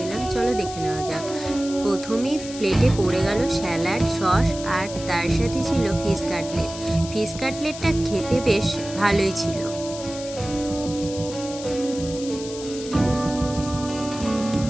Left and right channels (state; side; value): noise; left; hiss, 12 dB below the sound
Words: চলো দেখে নেওয়া যাক। প্রথমেই প্লেটে পড়ে গেল স্যালাড, সস, আর তার সাথে ছিল ফিশ কাটলেট। ফিশ কাটলেটটা খেতে বেশ ভালোই ছিল।